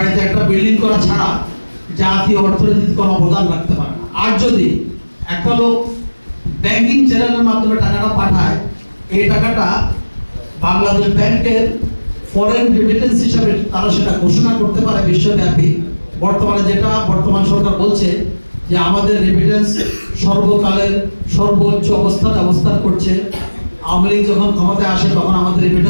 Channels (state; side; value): inverted; both; correlation -1.00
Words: একটা বিল্ডিং করা ছাড়া জাতীয় অর্থনীতিতে কোনো অবদান রাখতে পারে না। আর যদি একটা লোক ব্যাংকিং চ্যানেলের মাধ্যমে টাকাটা পাঠায়, এই টাকাটা বাংলাদেশ ব্যাংকের ফরেন রেমিটেন্স হিসাবে তারা সেটা ঘোষণা করতে পারে বিশ্বব্যাপী। বর্তমানে যেটা বর্তমান সরকার বলছে যে আমাদের রেমিটেন্স সর্বকালের সর্বোচ্চ অবস্থান করছে। আওয়ামী লীগ যখন ক্ষমতায় আসে তখন আমাদের